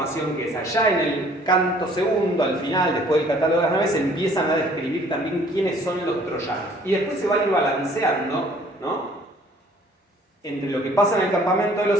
que esa. Ya en el canto segundo, al final, después del catálogo de las naves, empiezan a describir también quiénes son los troyanos. Y después se va a ir balanceando, ¿no? Entre lo que pasa en el campamento de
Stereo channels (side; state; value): both; normal; correlation 0.56